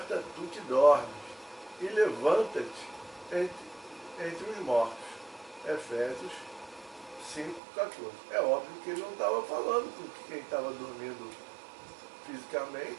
tu que dormes, e levanta-te entre os mortos. Efésios 5,14. É óbvio que ele não estava falando com quem estava dormindo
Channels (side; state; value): left; drops out; at 7.6 s